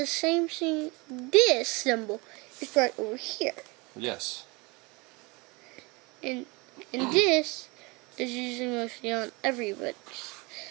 same thing. This symbol is right over here. Yes. And this is usually mostly on everybody.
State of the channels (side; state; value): left; quieter; 26.7 dB